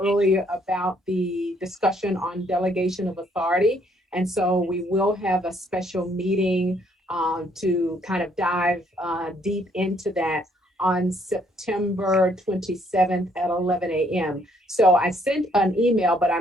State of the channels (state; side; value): normal; both; correlation 0.67